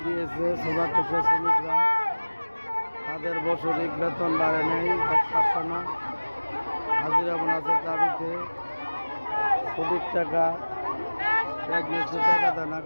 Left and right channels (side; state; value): both; inverted; correlation -1.00